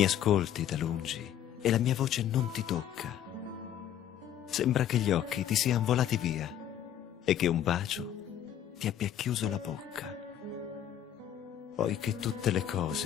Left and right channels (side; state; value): right; quieter; 10.5 dB